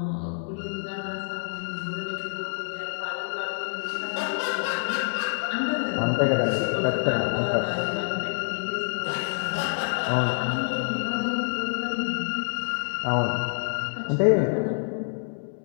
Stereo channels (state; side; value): silent; right; digital silence